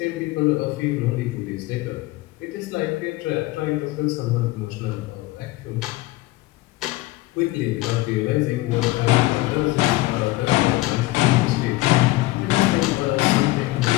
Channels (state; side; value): quieter; right; 19.5 dB